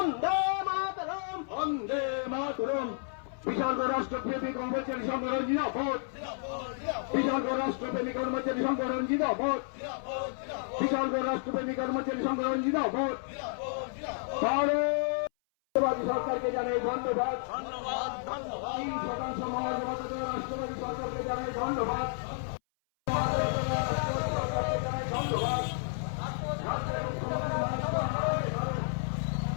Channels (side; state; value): right; silent; 57 dB below the other